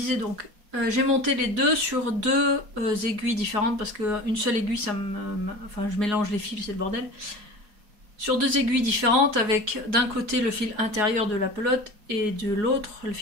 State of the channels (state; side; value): late; left; 4.8 ms